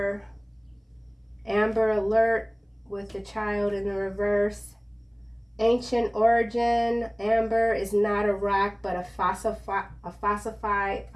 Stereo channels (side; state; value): both; identical; correlation 1.00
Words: Amber Alert with the child in the reverse. Ancient origin. Amber is not a rock, but a fossilized.